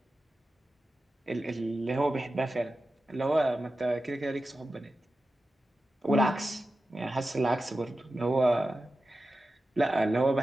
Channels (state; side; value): normal; both; correlation 0.93